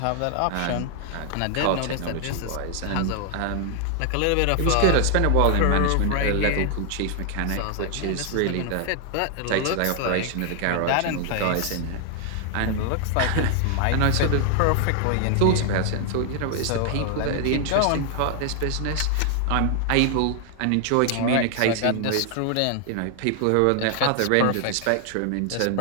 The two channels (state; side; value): different; both; correlation 0.00